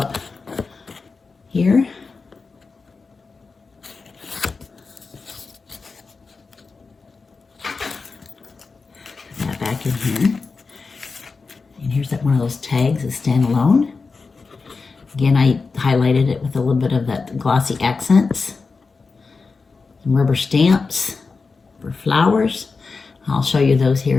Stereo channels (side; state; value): right; quieter; 4.4 dB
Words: here. Put that back in here. And here's that one of those tags, a standalone. Again, I highlighted it with a little bit of that glossy accents. Some rubber stamps for flowers. I'll show you those here